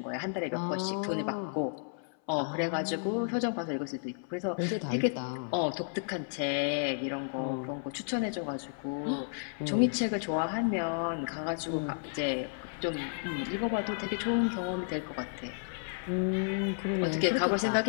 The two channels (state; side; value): silent; right; 56 dB below the other